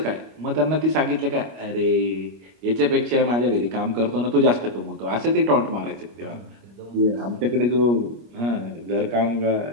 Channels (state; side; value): late; left; 25 ms